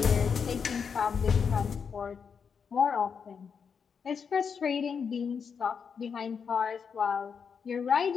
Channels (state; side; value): quieter; right; 6.4 dB